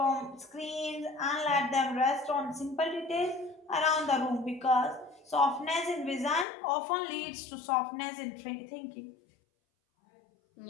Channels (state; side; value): drops out; right; at 6.5 s